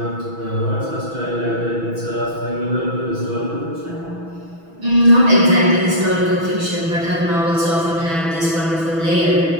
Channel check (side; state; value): left; late; 6.1 ms